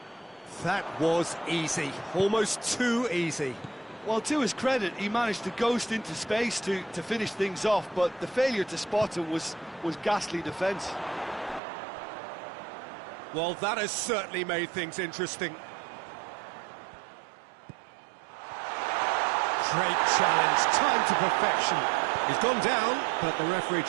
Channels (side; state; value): left; drops out; at 11.6 s